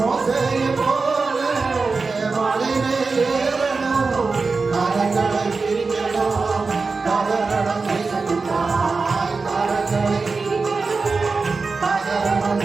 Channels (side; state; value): left; quieter; 4.2 dB